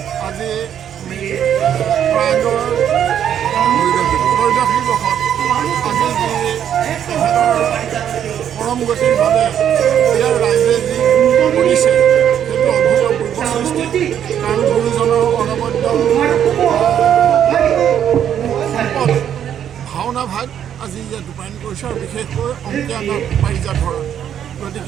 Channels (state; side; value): quieter; left; 9.5 dB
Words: আজি প্ৰয়াগৰ ত্ৰয়োদশী বৰ্ষত আজি যি তেখেতৰ পৰম গতিৰ বাবে ইয়াৰ ৰাইজে যি কৰিছে সেইটো অভূতপূৰ্ব সৃষ্টি কাৰণ গুৰুজনৰ অনবদ্য সম্পদ ভাওনা ভাগ আজি ইয়াত ৰূপায়ণ কৰিছে আৰু বিশেষকৈ অংকীয়া নাট পাৰিজাত হৰণ